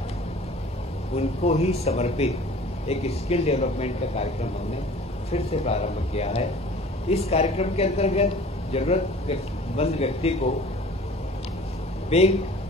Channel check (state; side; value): normal; both; correlation 0.46